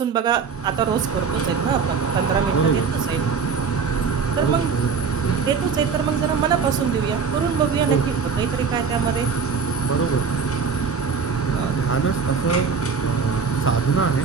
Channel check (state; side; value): quieter; left; 5.6 dB